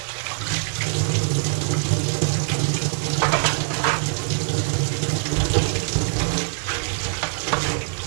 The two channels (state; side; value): silent; left; 63 dB below the other